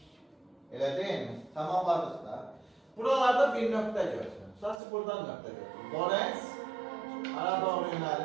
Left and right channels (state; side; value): drops out; left; at 4.8 s